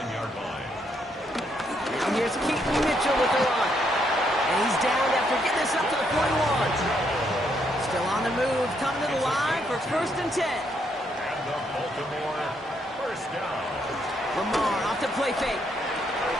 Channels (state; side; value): normal; both; correlation 0.75